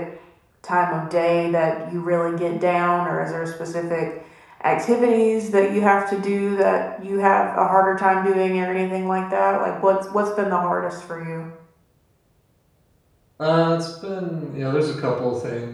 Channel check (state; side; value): identical; both; correlation 1.00